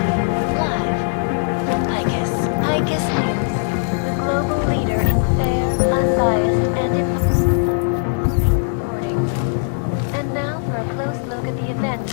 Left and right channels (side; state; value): right; silent; digital silence